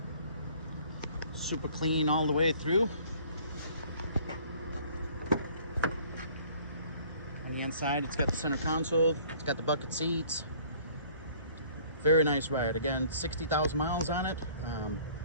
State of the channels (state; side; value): inverted; both; correlation -0.55